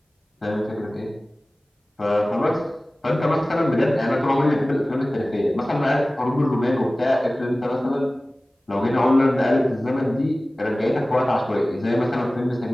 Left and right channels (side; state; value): both; normal; correlation 0.98